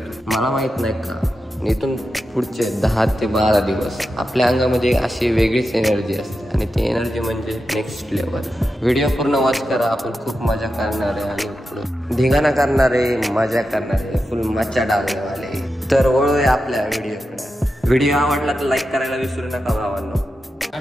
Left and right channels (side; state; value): both; normal; correlation 0.90